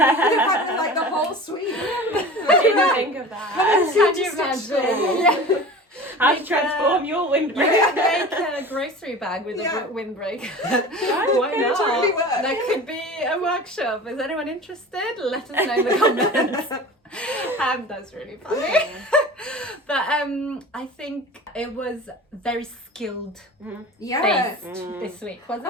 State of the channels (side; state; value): both; normal; correlation 0.37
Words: Like the whole suite. I didn't think of that. Can you imagine? How to transform your windbreaker. Make a grocery bag with a windbreaker. Why not? Really work. That could be a workshop. Is anyone interested? Let us know in the comments. That's really funny. But I think it was very skilled based this week,